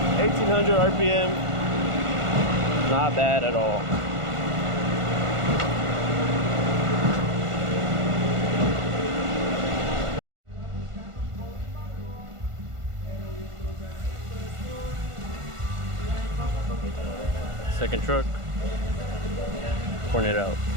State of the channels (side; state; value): left; late; 1.5 ms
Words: RPM, not bad at all. Second truck, pouring it out.